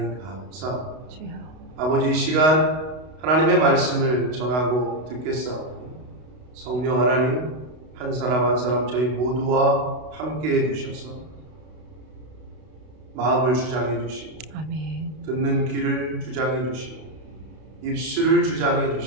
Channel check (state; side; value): late; left; 32 ms